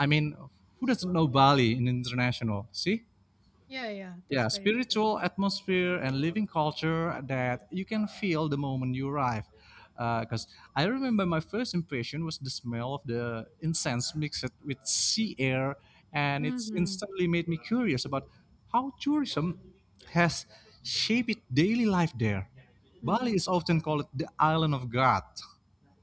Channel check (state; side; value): identical; both; correlation 1.00